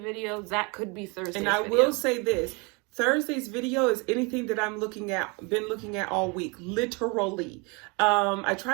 that could be Thursday's video. And I will say this. Thursday's video is anything that I'm been looking at all week, literally. I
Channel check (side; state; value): left; quieter; 28.9 dB